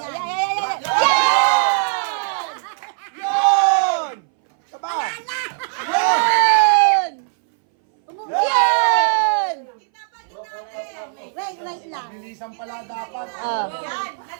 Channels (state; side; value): silent; left; 62 dB below the other